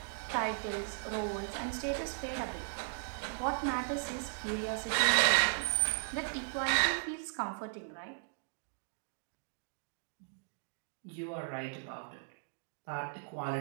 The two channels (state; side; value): silent; left; digital silence